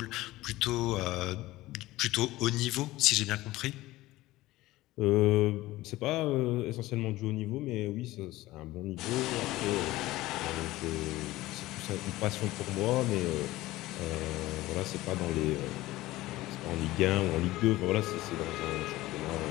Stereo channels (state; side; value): quieter; right; 17.7 dB